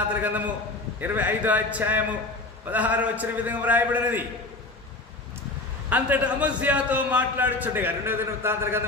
గ్రంథము 25వ అధ్యాయము 16వ వచనం విధంగా వ్రాయబడినది. అంతటా అమజ్యాతో మాట్లాడుచుండగా 2వ దినవృత్తాంతల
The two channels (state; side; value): quieter; right; 3.0 dB